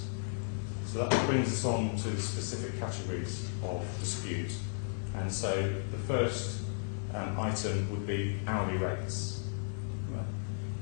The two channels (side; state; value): right; silent; digital silence